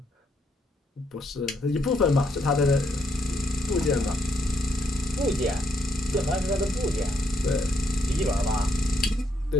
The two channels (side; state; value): both; normal; correlation 0.75